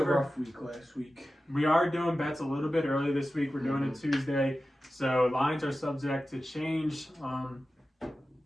rough week last week. we are doing bets a little bit early this week. We're doing it Tuesday, so lines are subject to change.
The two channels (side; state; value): both; normal; correlation 0.94